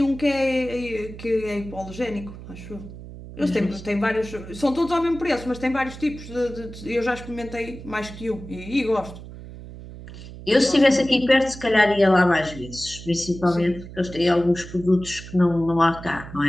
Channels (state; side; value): noise; right; hum, 14 dB below the sound